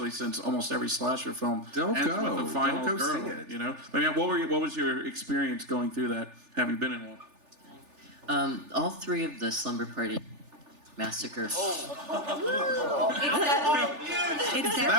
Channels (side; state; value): left; late; 3.4 ms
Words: since almost every slasher film Don't ends go. with a final Don't go girl. see it. You know, I mean, what was your experience going through that, having been in one? All three of the Slumber Party Massacre. That